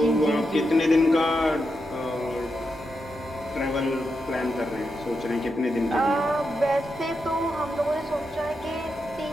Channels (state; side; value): normal; both; correlation 0.86